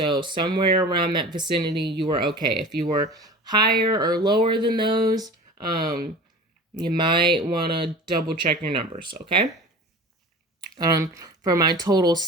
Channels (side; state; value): both; normal; correlation 0.37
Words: somewhere around that vicinity, you are okay. If you were higher or lower than those, you might want to double check your numbers. Okay. For my total